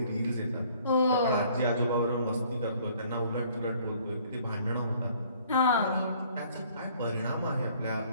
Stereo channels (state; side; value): inverted; both; correlation -0.58